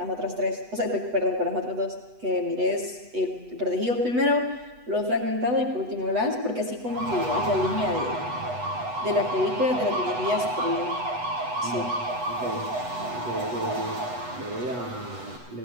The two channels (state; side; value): late; left; 8.1 ms